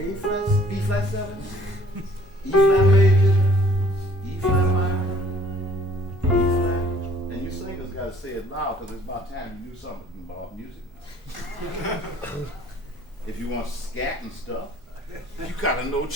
flat, B flat 7, E flat major, E flat minor. you want scat and stuff, you gotta know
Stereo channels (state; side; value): normal; both; correlation 0.57